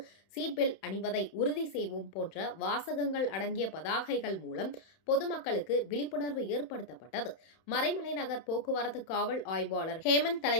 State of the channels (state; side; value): late; right; 31 ms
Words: சீட் பெல்ட் அணிவதை உறுதி செய்வோம் போன்ற வாசகங்கள் அடங்கிய பதாகைகள் மூலம் பொதுமக்களுக்கு விழிப்புணர்வு ஏற்படுத்தப்பட்டது. மறைமலை நகர் போக்குவரத்து காவல் ஆய்வாளர் ஹேமந்த்